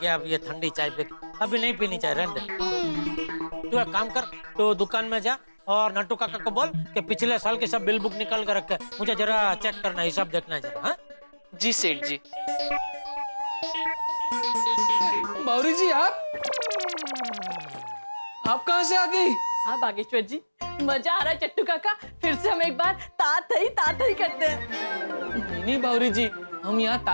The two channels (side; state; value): both; inverted; correlation -1.00